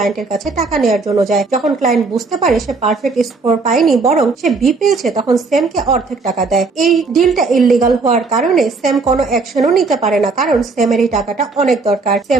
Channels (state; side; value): quieter; left; 4.1 dB